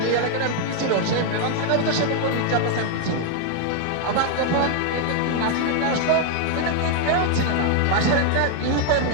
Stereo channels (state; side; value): different; both; correlation 0.00